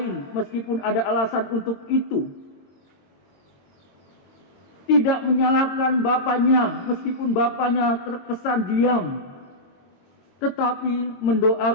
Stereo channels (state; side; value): late; right; 22 ms